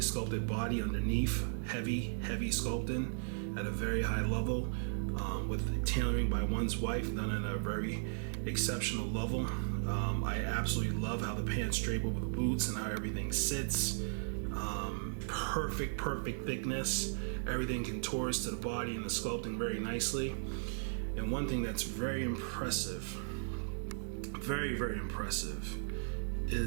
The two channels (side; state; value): left; silent; digital silence